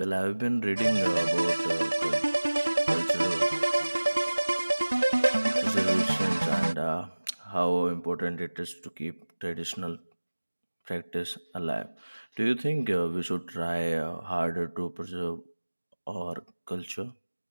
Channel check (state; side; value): inverted; both; correlation -1.00